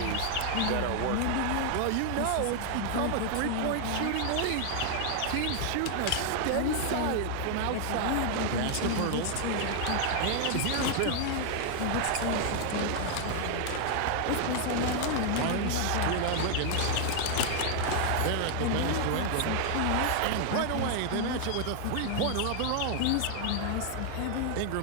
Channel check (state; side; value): different; both; correlation 0.00